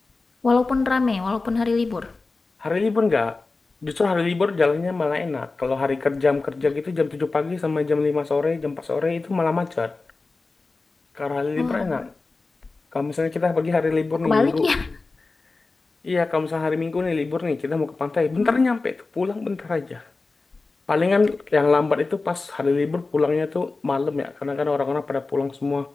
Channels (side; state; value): right; quieter; 3.7 dB